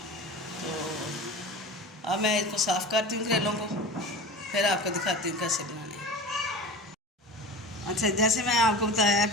अब मैं इसको साफ़ करती हूँ करेलों को, फिर आपको दिखाती हूँ कैसे बनाने हैं। अच्छा, जैसे मैं आपको बताया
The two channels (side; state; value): both; normal; correlation 0.34